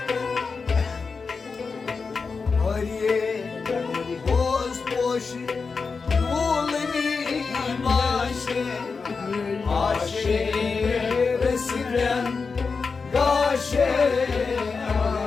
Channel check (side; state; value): right; quieter; 4.8 dB